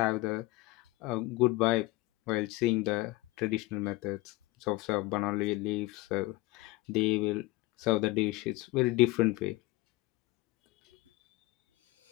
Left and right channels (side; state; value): right; quieter; 20.1 dB